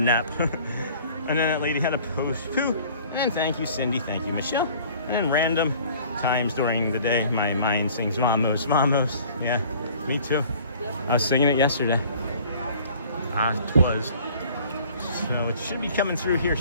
And then that lady had a post poo. And thank you, Cindy. Thank you, Michelle. And then random times during the day, my mind sings Vamos, Vamos. Yeah, me too. I was singing it yesterday. Twas. So it should be coming through here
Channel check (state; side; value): inverted; both; correlation -0.51